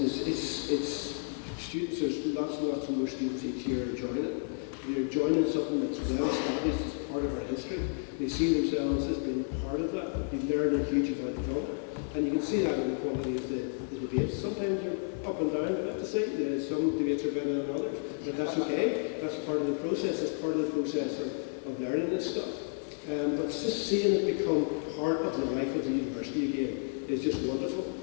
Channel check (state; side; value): silent; right; 57 dB below the other